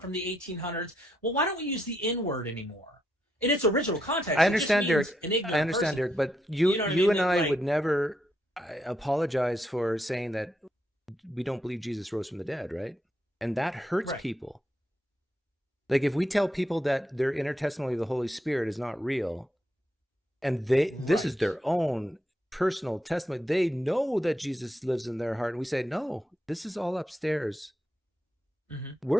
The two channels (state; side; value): normal; both; correlation 0.80